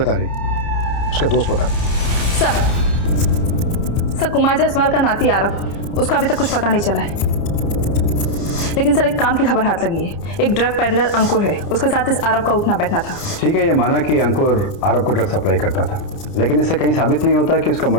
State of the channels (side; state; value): right; late; 30 ms